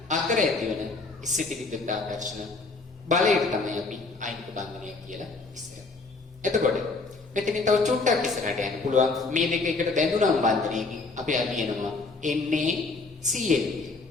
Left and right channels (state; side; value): quieter; right; 3.8 dB